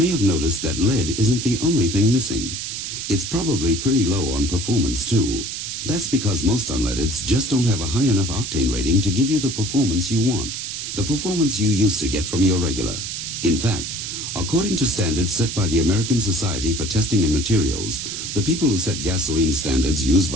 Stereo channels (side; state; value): right; noise; hiss, 5 dB below the sound